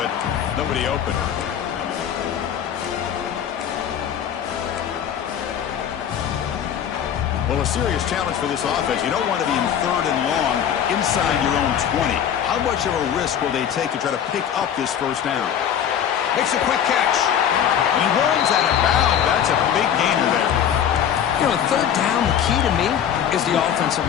nobody open. Well, a serious challenge for this offense. You don't want to be in third and long inside your own 20. How much of a risk will they take to try to pick up this first down? Makes a quick catch. He runs out of bounds. That's a big gainer there. You know, third down, the key to me is the offensive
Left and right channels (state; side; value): quieter; right; 9.1 dB